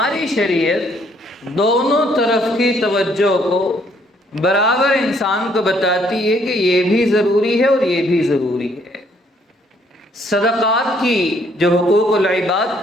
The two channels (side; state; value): both; normal; correlation 0.66